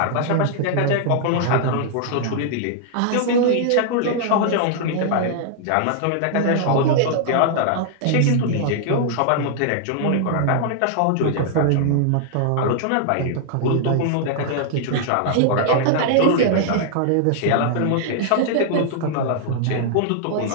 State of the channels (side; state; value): both; different; correlation -0.01